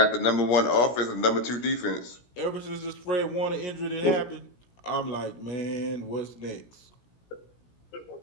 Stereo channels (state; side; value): late; right; 17 ms